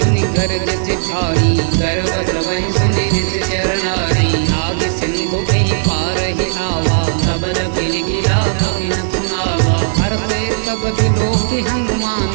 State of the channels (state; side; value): silent; left; 62 dB below the other